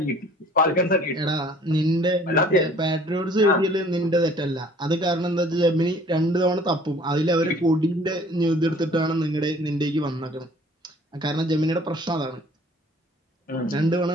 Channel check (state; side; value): normal; both; correlation 0.53